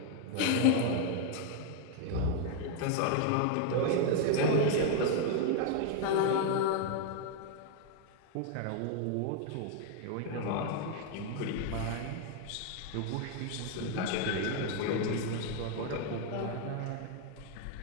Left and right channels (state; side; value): different; both; correlation 0.00